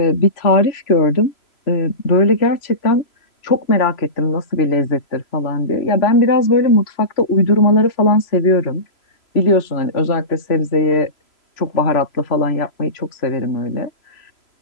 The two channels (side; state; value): right; late; 3.0 ms